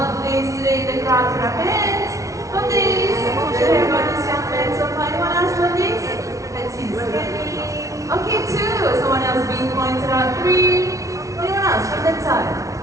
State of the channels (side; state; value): left; late; 0.16 ms